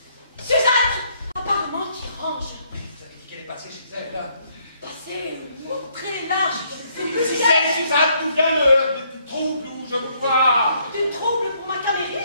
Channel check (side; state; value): both; inverted; correlation -0.69